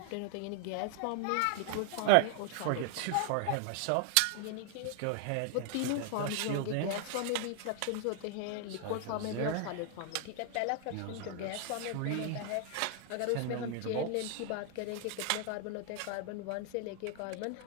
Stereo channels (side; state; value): both; different; correlation 0.00